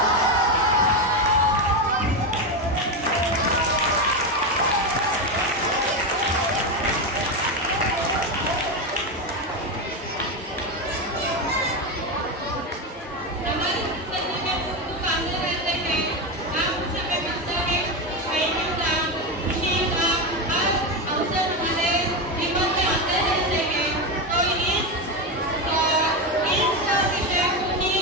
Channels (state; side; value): normal; both; correlation 0.13